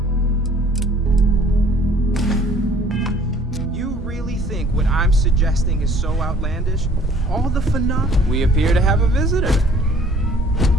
You really think what I'm suggesting is so outlandish? All the phenomena. We appear to have a visitor.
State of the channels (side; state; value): both; normal; correlation 0.55